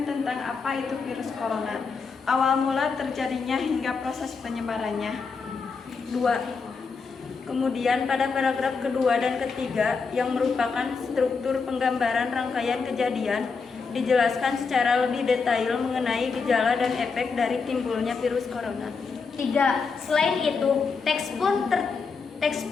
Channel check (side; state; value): right; quieter; 5.0 dB